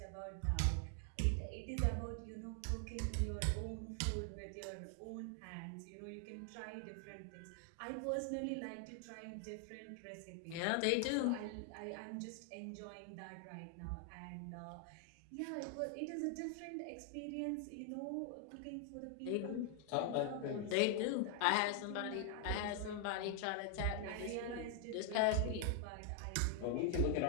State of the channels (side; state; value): both; different; correlation 0.00